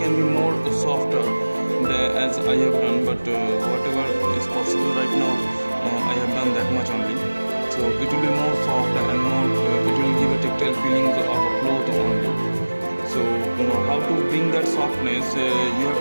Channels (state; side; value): inverted; both; correlation -1.00